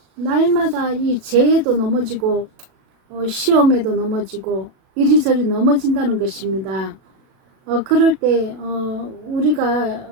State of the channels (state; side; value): late; left; 37 ms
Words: 날마다 이 죄에도 넘어지고 시험에도 넘어지고 이리저리 넘어진다는 것입니다. 그럴 때 우리가